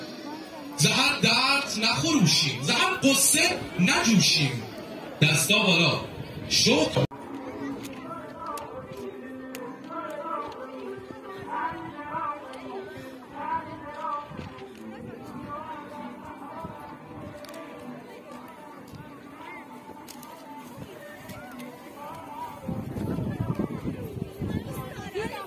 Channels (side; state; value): both; identical; correlation 1.00